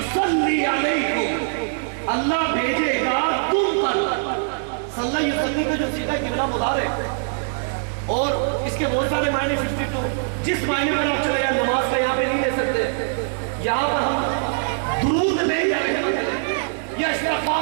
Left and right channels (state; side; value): silent; left; 64 dB below the other